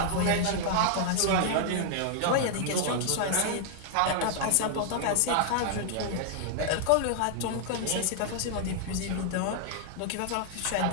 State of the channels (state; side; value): different; both; correlation -0.01